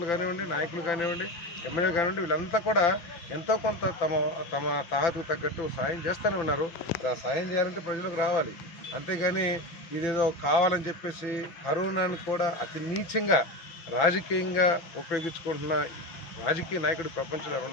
కానివ్వండి, నాయకులు కానివ్వండి, ఎమ్మెల్యేలు కానివ్వండి, వీళ్ళంతా కూడా ఎంతో కొంత తమ తాహతుకు తగ్గట్టు సాయం చేస్తూనే ఉన్నారు. సాయం చేయాలంటే ప్రజలకు రావాలి, అంతేగాని ఇదేదో కావాలని చెప్పేసి కరోనాను కూడా అతి నీచంగా రాజకీయంగా ఉపయోగించుకుంటున్న రాజకీయ నాయకుడు ప్రపంచంలో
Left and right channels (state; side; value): late; right; 5.9 ms